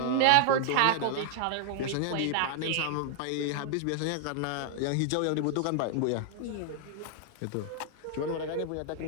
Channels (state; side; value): different; both; correlation 0.00